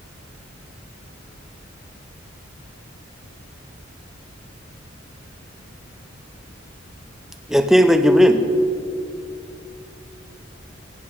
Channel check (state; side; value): normal; both; correlation 0.86